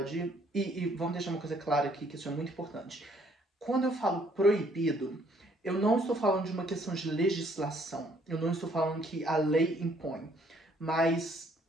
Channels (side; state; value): both; normal; correlation 0.64